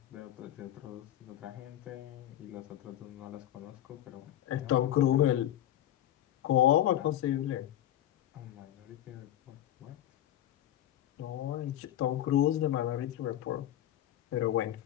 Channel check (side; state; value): right; quieter; 12.3 dB